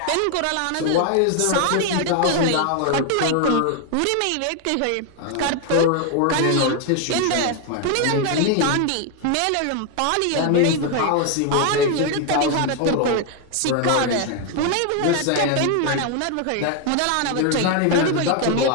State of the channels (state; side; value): different; both; correlation 0.01